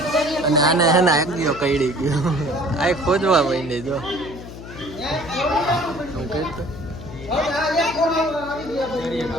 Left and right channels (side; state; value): left; noise; hum, 13 dB below the sound